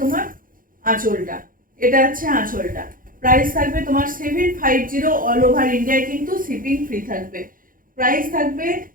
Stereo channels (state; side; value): late; left; 0.40 ms